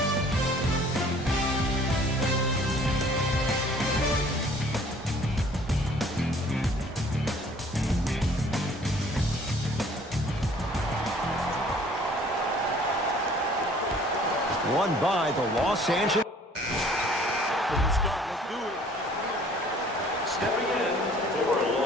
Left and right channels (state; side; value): normal; both; correlation 0.54